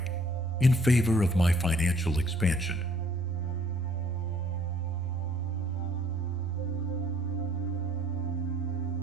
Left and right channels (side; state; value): both; normal; correlation 0.60